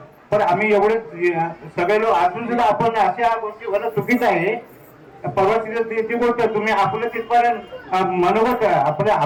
पण आम्ही एवढे सगळे लोक असून सुद्धा आपण अशा गोष्टी होणं चुकीचं आहे. परवा ती गोष्ट तुम्ही आपलं तिथपर्यंत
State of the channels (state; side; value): identical; both; correlation 1.00